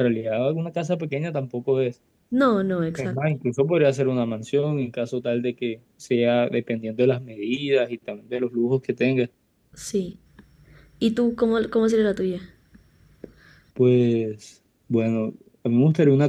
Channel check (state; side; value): identical; both; correlation 1.00